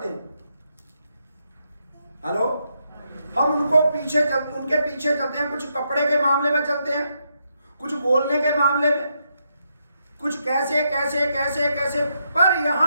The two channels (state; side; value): inverted; both; correlation -0.80